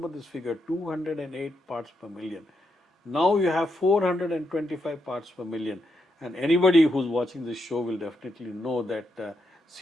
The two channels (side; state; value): both; normal; correlation 0.81